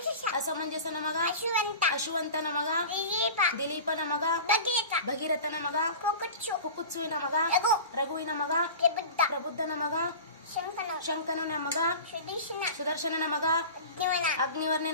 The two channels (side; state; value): both; inverted; correlation -0.35